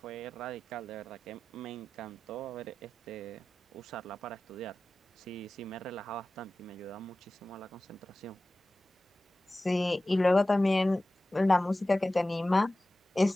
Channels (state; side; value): normal; both; correlation 0.96